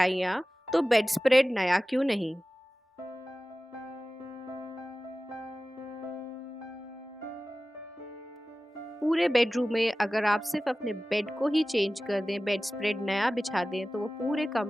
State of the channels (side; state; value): both; normal; correlation 0.96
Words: तो बेडस्प्रेड नया क्यों नहीं। पूरे बेडरूम में अगर आप सिर्फ अपने बेड को ही चेंज कर दें, बेड स्प्रेड नया बिछा दें, तो वो पूरे